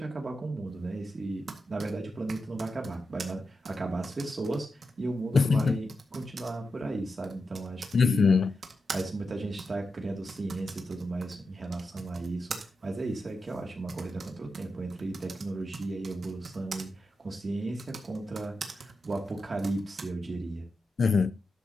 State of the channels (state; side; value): normal; both; correlation 0.89